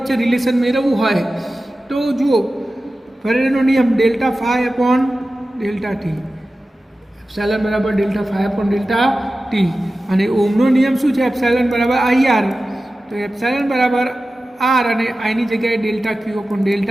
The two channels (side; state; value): both; normal; correlation 0.95